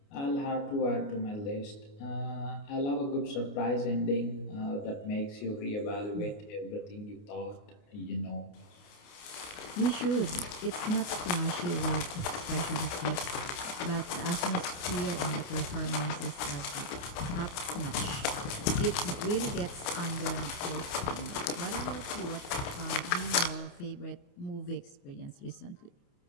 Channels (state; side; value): late; right; 29 ms